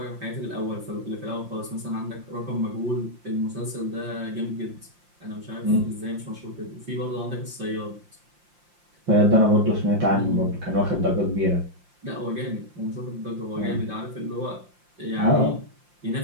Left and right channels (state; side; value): late; left; 5.7 ms